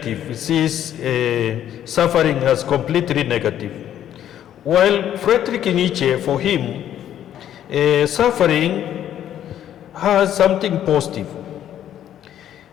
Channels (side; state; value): right; quieter; 10.9 dB